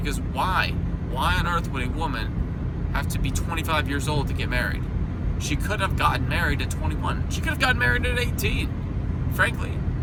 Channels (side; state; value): both; identical; correlation 1.00